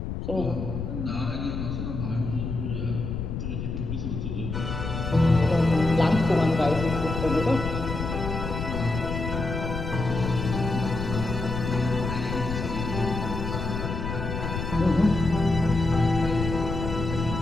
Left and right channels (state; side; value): noise; left; rumble, 4 dB below the sound